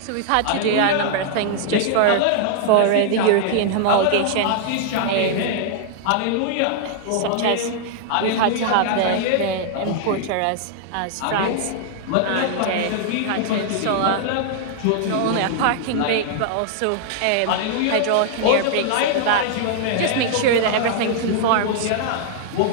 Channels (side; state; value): both; different; correlation -0.01